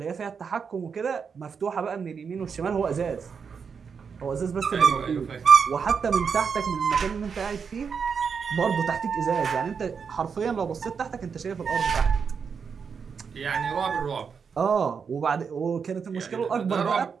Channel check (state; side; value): quieter; left; 6.1 dB